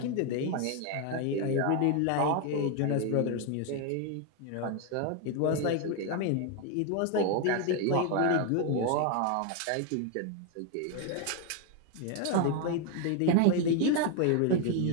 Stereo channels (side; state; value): both; different; correlation 0.01